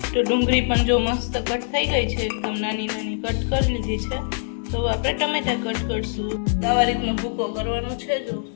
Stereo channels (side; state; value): right; silent; digital silence